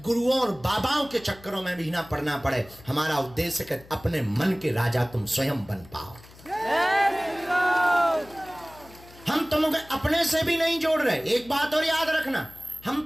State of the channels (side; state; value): left; noise; hum, 22 dB below the sound